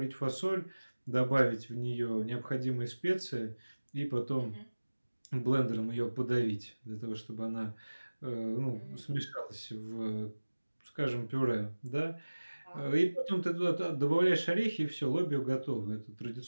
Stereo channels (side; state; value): both; inverted; correlation -1.00